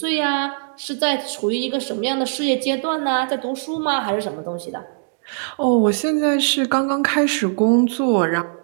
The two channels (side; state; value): left; silent; digital silence